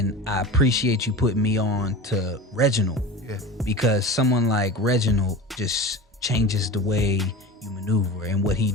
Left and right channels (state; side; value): normal; both; correlation 0.32